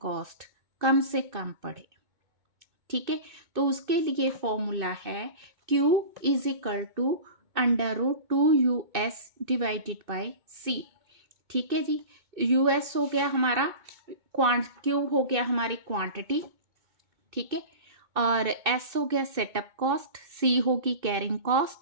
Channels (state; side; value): late; left; 2.6 ms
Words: कम से कम पड़े। ठीक है, तो उसके लिए फॉर्मूला है Q is equal to √2US divided by C। ठीक है जी, US हो गया हमारा Q हो गया हमारी क्वांटिटी। ठीक है, और S हो गया सेटअप कॉस्ट, C होगी कैरिंग